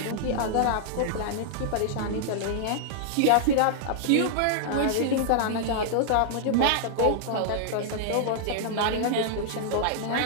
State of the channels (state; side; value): different; both; correlation -0.01